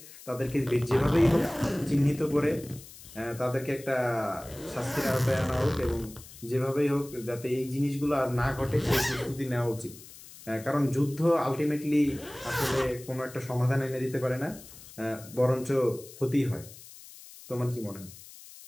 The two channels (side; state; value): left; noise; hiss, 18 dB below the sound